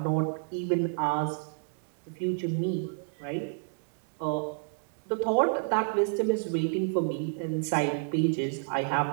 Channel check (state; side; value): silent; left; digital silence